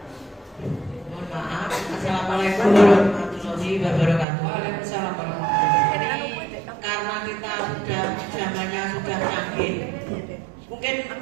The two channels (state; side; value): drops out; left; at 4.2 s